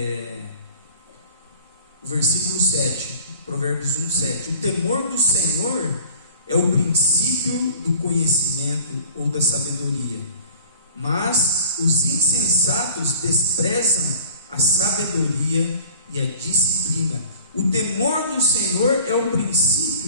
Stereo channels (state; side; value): inverted; both; correlation -0.46